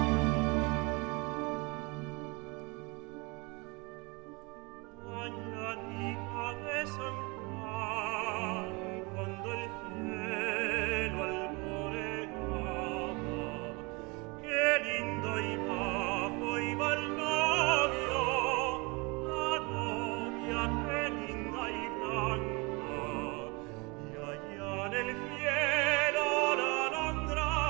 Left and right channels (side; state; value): left; quieter; 28.0 dB